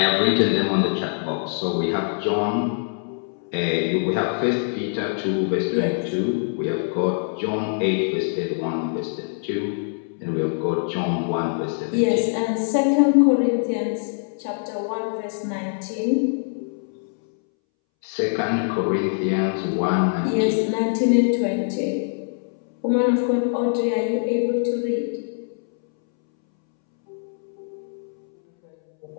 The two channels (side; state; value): right; silent; 63 dB below the other